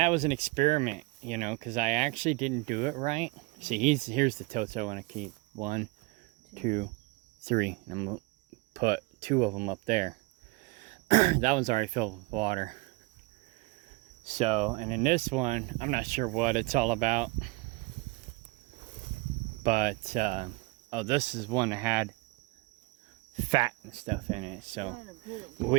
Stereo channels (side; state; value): left; quieter; 25.2 dB